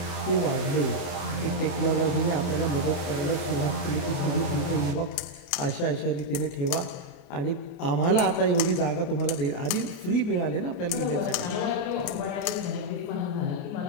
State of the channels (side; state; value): right; late; 28 ms